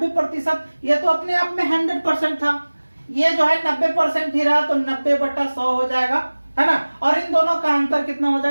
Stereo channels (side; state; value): both; inverted; correlation -1.00